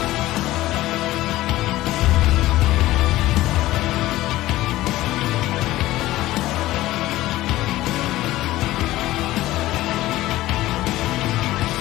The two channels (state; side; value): quieter; right; 16.5 dB